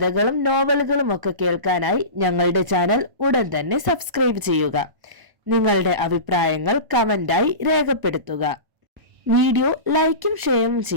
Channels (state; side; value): late; left; 1.0 ms